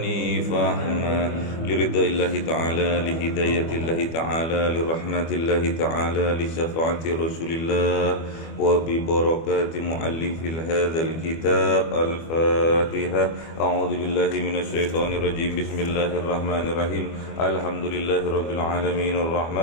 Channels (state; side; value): late; right; 25 ms